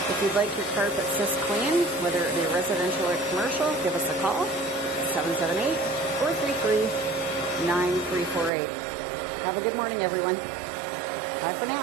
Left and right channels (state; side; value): drops out; left; at 8.5 s